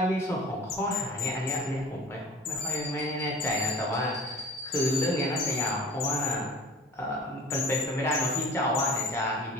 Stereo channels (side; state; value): both; normal; correlation 0.41